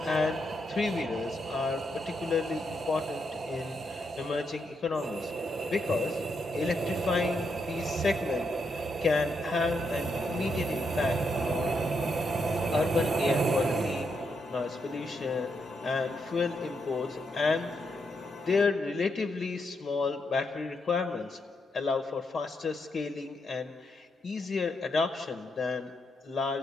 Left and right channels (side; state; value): both; normal; correlation 0.80